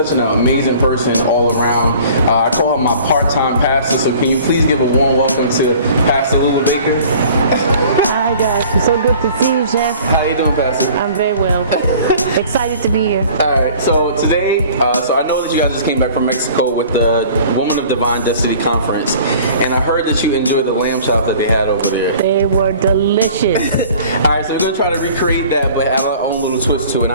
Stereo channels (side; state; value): both; inverted; correlation -0.48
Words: an amazing person all around. I call her my part-time pastor, so can you please give a warm welcome to Pastor Lula Baker? Hi guys, it's so good to see you, Jeff. How you doing, Pastor? I'm very well. Excited to be here. Alright, so today, so I know that you guys just came back from Mexico with the Woman of Divine Destiny Conference, and I heard that you enjoyed the lamb chops that they had over there. They were delicious. Alright, so we're going to try to recreate that, but add our own little twist to it. And